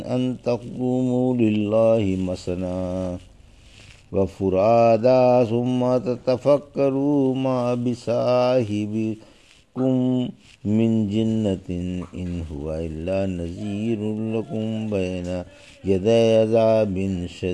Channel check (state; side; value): identical; both; correlation 1.00